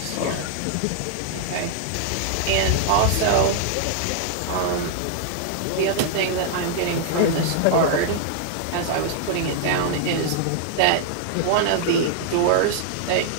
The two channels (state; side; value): different; both; correlation -0.01